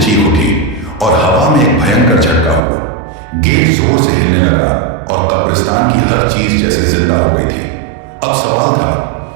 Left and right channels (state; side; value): drops out; left; at 2.6 s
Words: चीख उठी और हवा में एक भयंकर झटका हुआ। गेट जोर से हिलने लगा और कब्रिस्तान की हर चीज जैसे जिंदा हो गई थी। अब सवाल था,